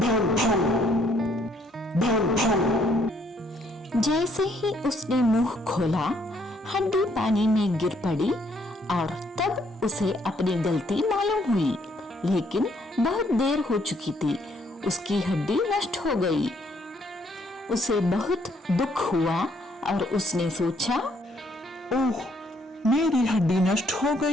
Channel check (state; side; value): normal; both; correlation 0.68